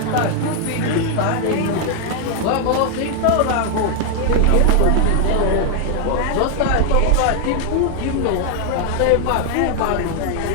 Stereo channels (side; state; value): both; different; correlation 0.00